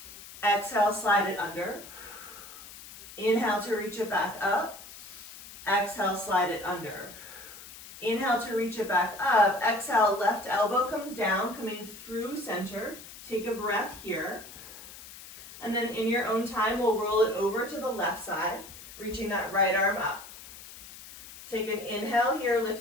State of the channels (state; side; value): noise; left; hiss, 16 dB below the sound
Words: Exhale, slide it under. Inhale to reach it back up. Exhale, slide it under. Inhale to reach it back up. Exhale, left elbow comes down, coming through center. Take a breath here. And then in your own time, we'll roll it over to the left side, reaching that right arm up. Take an inhale here,